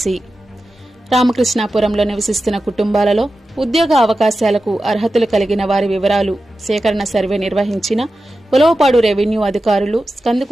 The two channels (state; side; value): normal; both; correlation 0.93